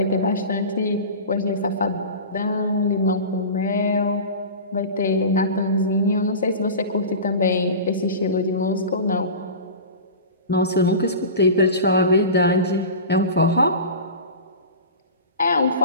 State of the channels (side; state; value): both; inverted; correlation -0.32